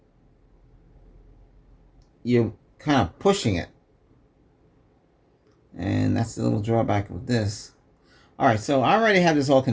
kind of pushing it, and that's the little drawback of this. All right, so I already have this all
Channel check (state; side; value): identical; both; correlation 1.00